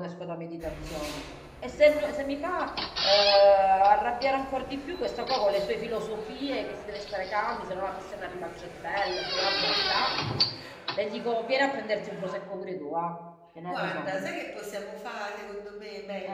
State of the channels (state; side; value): identical; both; correlation 1.00